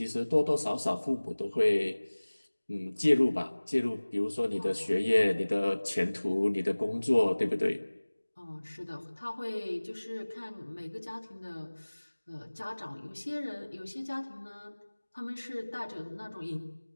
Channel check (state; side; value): inverted; both; correlation -1.00